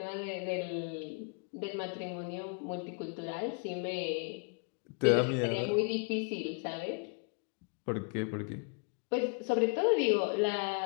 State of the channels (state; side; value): quieter; right; 37.8 dB